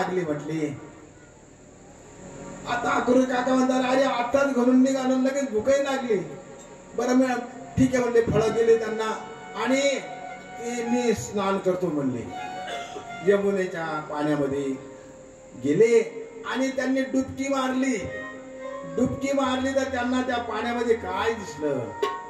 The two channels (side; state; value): both; identical; correlation 1.00